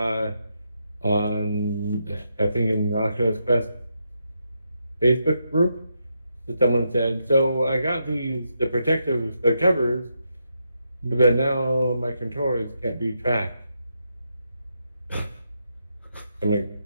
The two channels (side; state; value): both; inverted; correlation -0.82